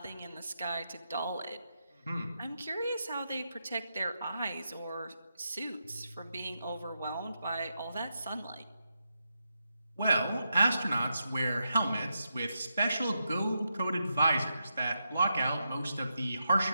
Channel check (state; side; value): inverted; both; correlation -0.86